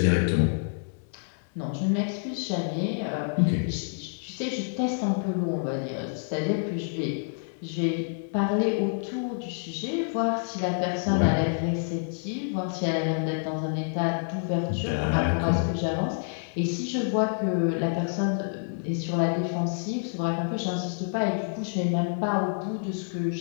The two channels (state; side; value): silent; right; digital silence